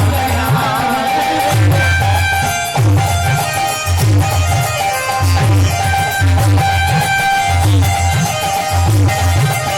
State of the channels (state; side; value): identical; both; correlation 1.00